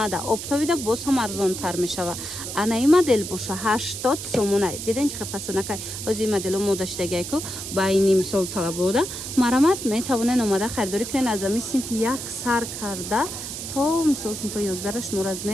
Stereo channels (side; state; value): right; noise; hiss, 7 dB below the sound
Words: оптовида боз ҳам арзонтар мешава ана ин модел боша 80 сомонай диден чӣ фасонакай ҳозир модело мо доштагайку байни мисол талабода марҳамат метавонен омада харидорӣ кунед аз ами синфи як сар карда то мисол синфи 11 шумо